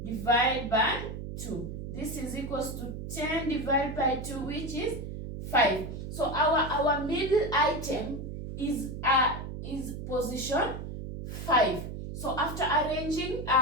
divided by 2. This is equals to 10 divided by 2, which is 5. So our middle item is position 5. So after arranging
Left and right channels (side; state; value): right; noise; hum, 7 dB below the sound